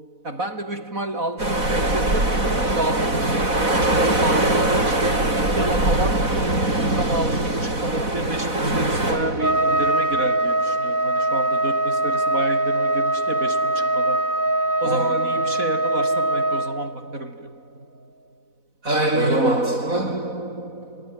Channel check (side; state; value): left; late; 4.0 ms